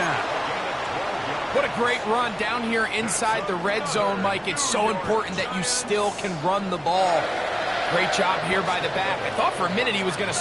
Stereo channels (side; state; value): both; identical; correlation 1.00